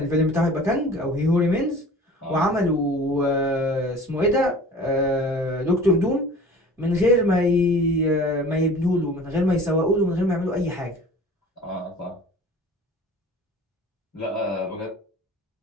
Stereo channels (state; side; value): normal; both; correlation 0.43